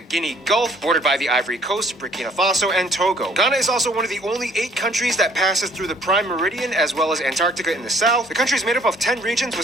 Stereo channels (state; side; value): normal; both; correlation 0.59